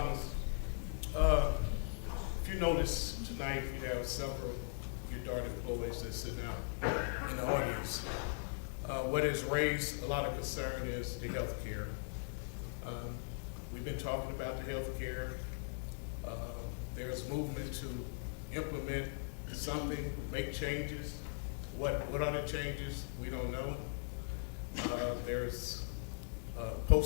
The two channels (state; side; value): silent; right; digital silence